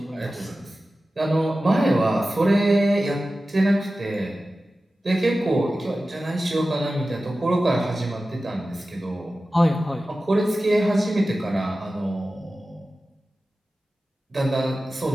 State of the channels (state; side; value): normal; both; correlation 0.95